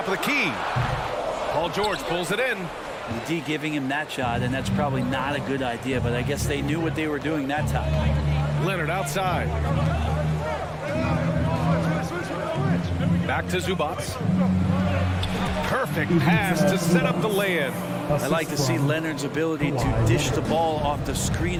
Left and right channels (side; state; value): both; identical; correlation 1.00